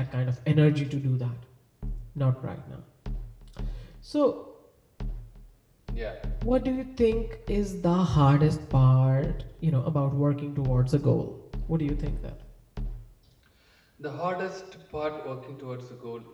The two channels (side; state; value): both; identical; correlation 1.00